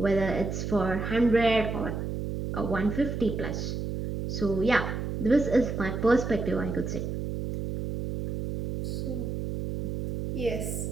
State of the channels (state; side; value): noise; right; hum, 3 dB below the sound